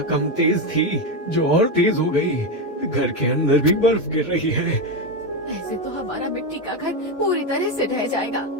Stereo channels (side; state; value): right; late; 1.9 ms